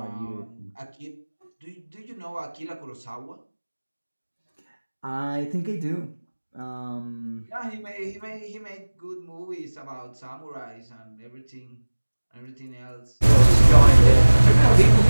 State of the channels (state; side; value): inverted; both; correlation -1.00